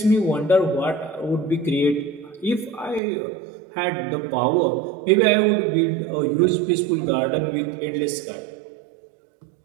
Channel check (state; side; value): drops out; left; at 3.0 s